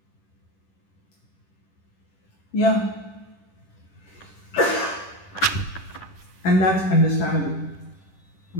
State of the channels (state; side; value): late; right; 10 ms